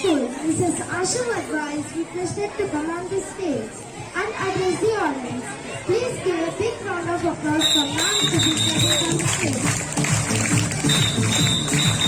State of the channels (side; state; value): both; identical; correlation 1.00